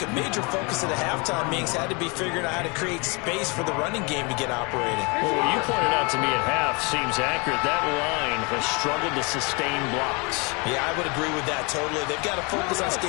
a major focus at the halftime meetings had to be figuring out how to create space for the running game to get operating. Well, what you pointed out to me at half seems accurate. That line has struggled to sustain blocks. Yeah, I would agree with that totally. They've got to focus on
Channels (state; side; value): quieter; right; 30.2 dB